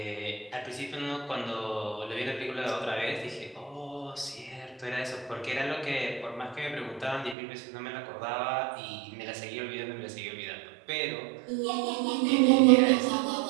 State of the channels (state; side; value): drops out; left; at 7.4 s